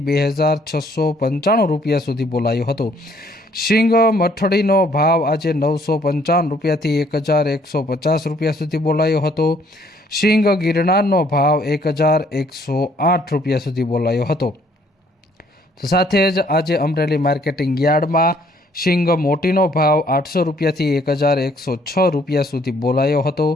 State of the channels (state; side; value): normal; both; correlation 0.63